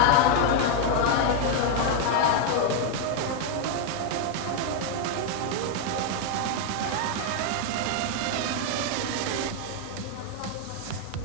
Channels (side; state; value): both; different; correlation 0.00